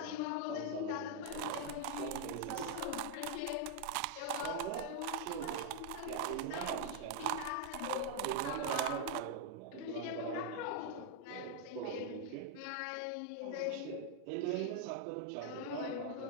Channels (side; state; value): both; different; correlation 0.00